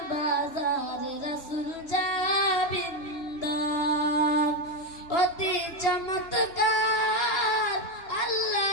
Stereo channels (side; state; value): right; late; 2.8 ms